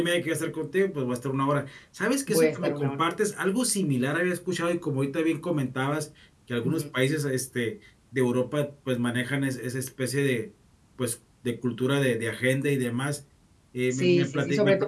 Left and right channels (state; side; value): identical; both; correlation 1.00